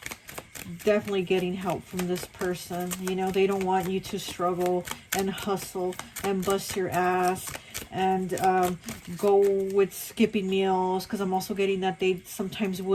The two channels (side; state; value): both; identical; correlation 1.00